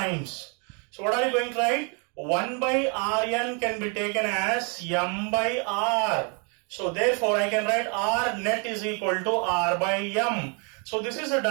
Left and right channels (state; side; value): quieter; left; 35.6 dB